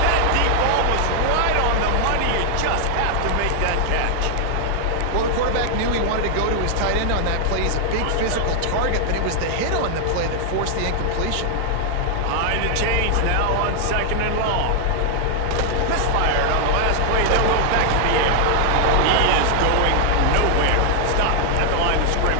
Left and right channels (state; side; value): different; both; correlation 0.00